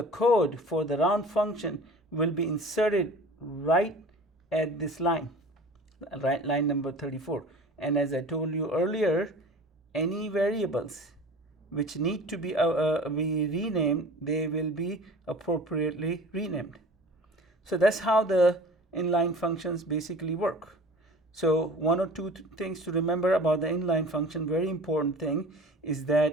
code for the round function will be inserted right at this line, right, line number 34. And as I told you earlier, any variables which need to be renamed, they will be appropriately renamed. So that's how the inline functions basically work. So one or two things to remember about the inline function. Very important thing is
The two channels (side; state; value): both; normal; correlation 0.42